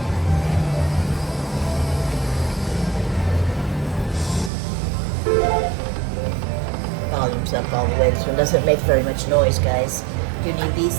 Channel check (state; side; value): drops out; left; at 4.5 s